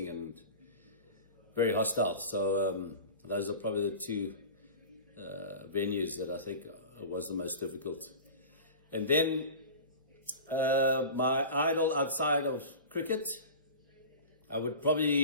and very hostile. So those are probably the two venues that I think was the most difficult. And then my idol outside of cricket, I would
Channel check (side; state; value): both; inverted; correlation -0.35